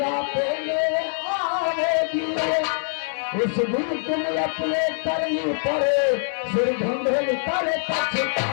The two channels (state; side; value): silent; right; digital silence